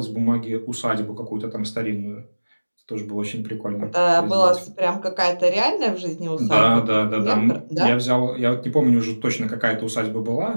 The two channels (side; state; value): both; inverted; correlation -1.00